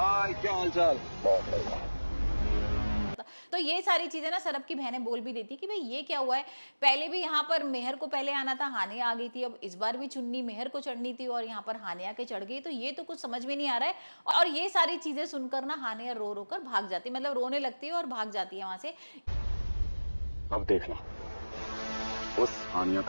क्या हालचाल? बहुत बढ़िया। तो ये सारी चीजें ना सरब की बहनें बोल भी देती कि भाई ये क्या हुआ है, पहले भी यहाँ पर मेहर को पहले आना था, हानिया आ गई थी, अब इस बार भी चुन्नी मेहर को चढ़नी थी और यहाँ पर हानिया के चढ़ गई। तो ये तो कुछ समझ में नहीं आ रहा है। और ये सारी चीजें सुनकर ना हानिया रो रो कर भाग जाती, मतलब रोने लगती है और भाग जाती है वहां से। अब देखना, उस हानिया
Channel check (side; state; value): both; inverted; correlation -1.00